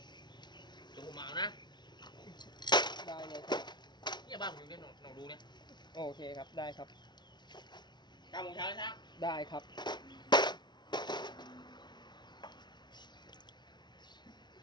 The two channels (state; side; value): late; right; 0.21 ms